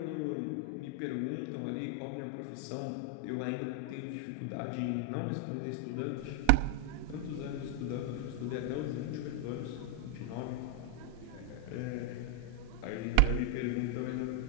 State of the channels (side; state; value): both; different; correlation 0.00